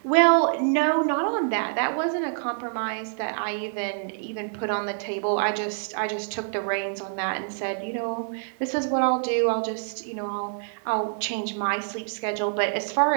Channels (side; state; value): left; silent; digital silence